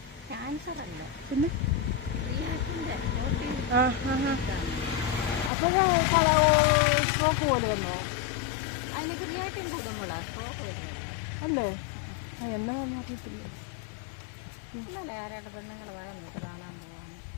ക്യാൻസർ അല്ല, പിന്നെ അപ്പോഴേ സ്ട്രോക്ക് പോലെ വന്നോ? അതിന് ക്രിയാറ്റിൻ കൂടുമ്പോഴാണ് സ്ട്രോക്ക് വരുന്നത് അല്ലേ? എന്നതാണെന്ന് അറിയത്തില്ലേ. ഇന്നലെ ആരായിട്ട് പെണ്ണുങ്ങൾ വേണം നമുക്ക് കാണാൻ പോവാണ്.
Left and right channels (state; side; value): drops out; right; at 5.5 s